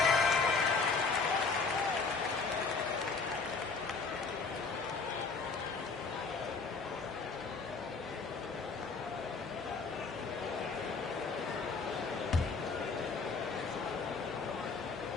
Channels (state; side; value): quieter; right; 4.5 dB